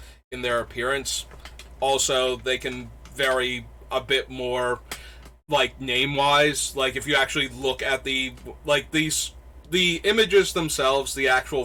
their appearance. Also, they can vary a bit more, like, name-wise. Like, if you actually look at the images themselves, the actual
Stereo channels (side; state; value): both; identical; correlation 1.00